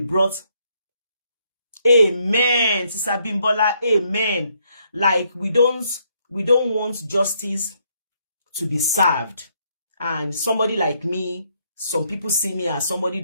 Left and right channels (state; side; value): inverted; both; correlation -0.72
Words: Amen. Sister Bimbola, amen. Like we don't want justice to be served. And somebody like me, some people see me as somebody